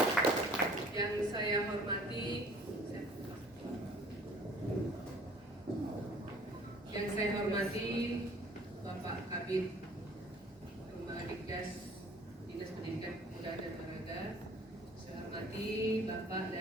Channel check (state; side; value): normal; both; correlation 0.52